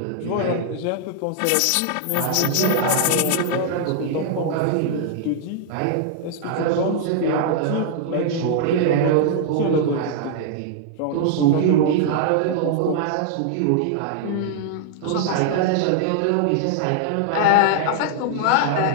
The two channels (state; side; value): different; both; correlation -0.01